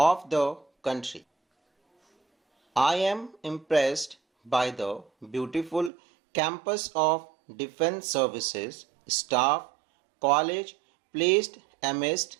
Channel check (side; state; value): left; drops out; at 5.9 s